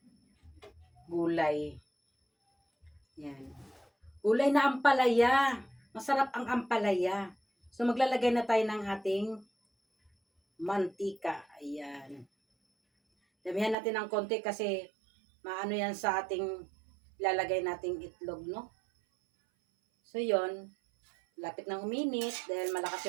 gulay. Yan. Gulay na ampalaya. Masarap ang ampalaya. So maglalagay na tayo ng ating mantika. Ayan. Damihan natin ng konti kasi maano yan sa ating lalagay nating itlog, no? So yon, lapit ng uminit dahil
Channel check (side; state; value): left; drops out; at 13.8 s